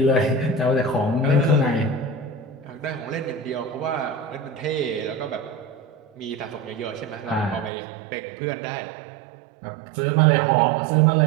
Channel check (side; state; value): left; drops out; at 7.7 s